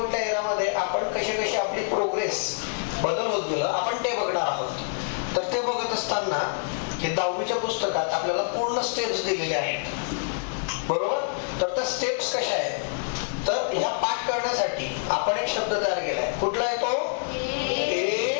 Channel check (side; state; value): right; silent; digital silence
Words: एरियामध्ये आपण कशी आपली प्रोग्रेस बदल होत गेलं आपण ते बघणार आहोत. तर ते बघत असताना हे 10वीच्या पुस्तकात आपल्याला पूर्ण स्टेप्स दिलेले आहेत, बरोबर? तर त्या स्टेप्स कशा आहेत? तर ह्या पाठ करण्यासाठी आपण एक शब्द तयार केलाय. कुठला आहे तो?